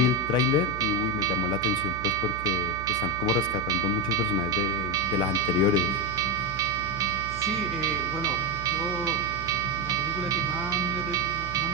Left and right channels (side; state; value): right; noise; hum, 11 dB below the sound